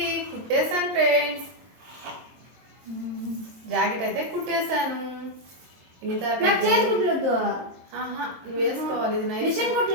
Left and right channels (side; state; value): left; late; 23 ms